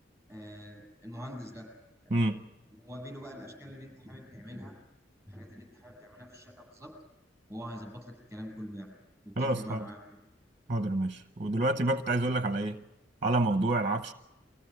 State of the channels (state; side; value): normal; both; correlation 0.56